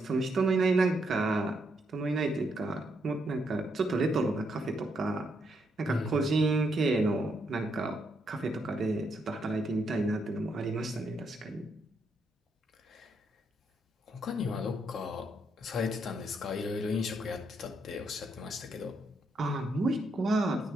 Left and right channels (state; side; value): normal; both; correlation 0.77